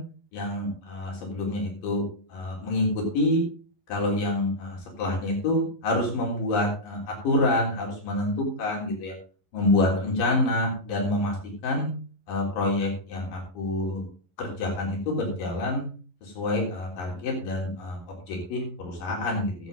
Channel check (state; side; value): late; right; 11 ms